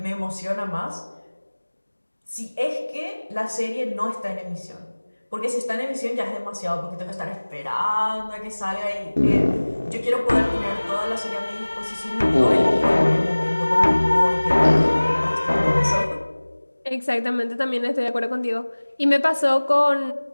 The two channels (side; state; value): both; inverted; correlation -1.00